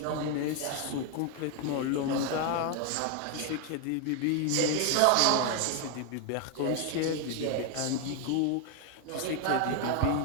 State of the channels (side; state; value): both; different; correlation 0.01